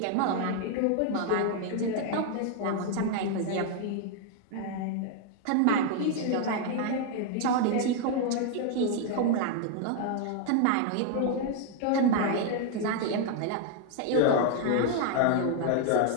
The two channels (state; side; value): different; both; correlation 0.00